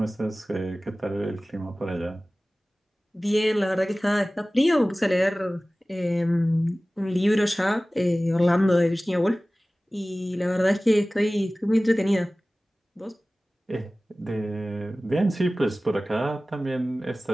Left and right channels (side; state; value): both; normal; correlation 0.97